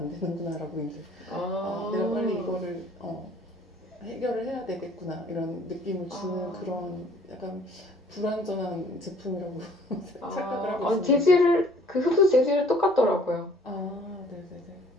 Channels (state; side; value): normal; both; correlation 0.56